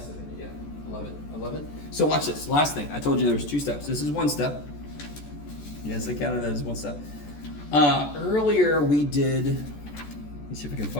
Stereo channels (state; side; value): late; right; 14 ms